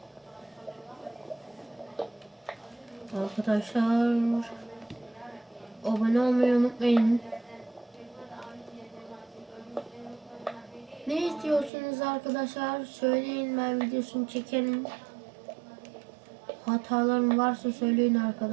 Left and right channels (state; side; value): drops out; left; at 11.7 s